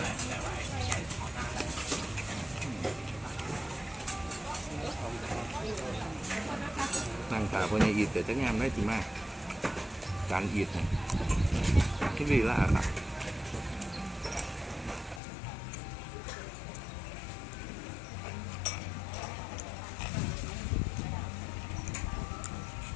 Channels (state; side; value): drops out; right; at 15.2 s